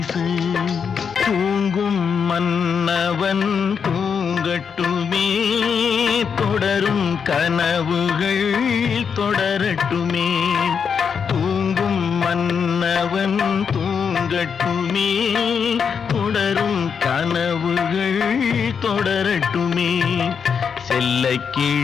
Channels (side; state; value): right; quieter; 6.6 dB